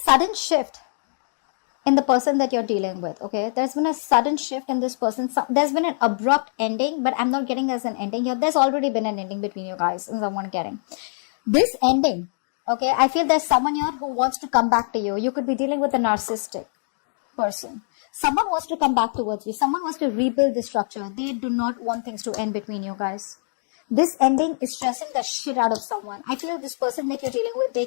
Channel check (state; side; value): silent; right; digital silence